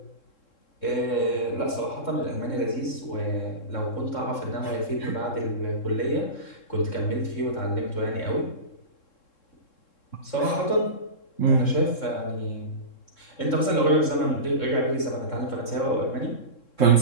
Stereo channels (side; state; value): right; late; 3.7 ms